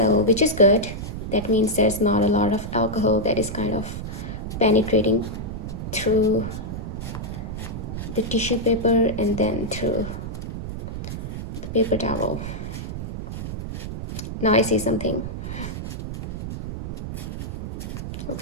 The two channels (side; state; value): right; noise; rumble, 6 dB below the sound